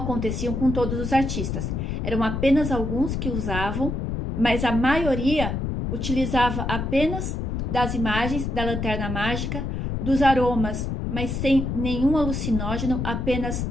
com todos os artistas. Eram apenas alguns que usavam, mas a maioria utilizava apenas das imagens da lanterna mágica, dos aromas, mas sem nenhum alucinógeno, apenas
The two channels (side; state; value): left; noise; rumble, 2 dB below the sound